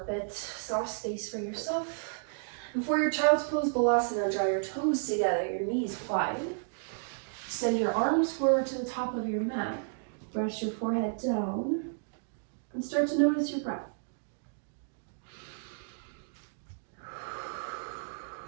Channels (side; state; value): left; silent; digital silence